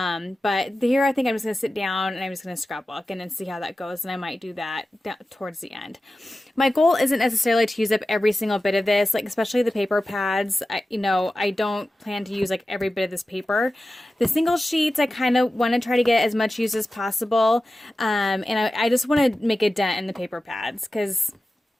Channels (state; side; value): normal; both; correlation 0.94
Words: here I think I'm just going to sit down and I'm just going to scrapbook and then see how that goes. And I might do that towards the end. My goal isn't necessarily to use up every single bit of this, like especially the paper pads. I don't plan to use like every bit of this paper. The single sheets, I kind of want to try to get as much use as possible. And I just want to make a dent in the paper pads, because